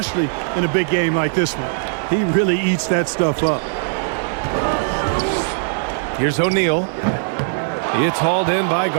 in a big game like this one. He really eats that stuff up. Here's O'Neal. It's hauled in by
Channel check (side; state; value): left; silent; digital silence